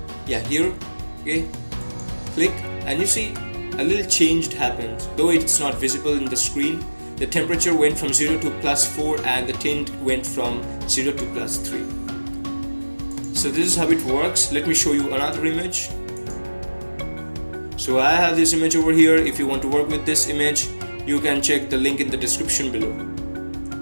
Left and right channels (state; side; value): inverted; both; correlation -1.00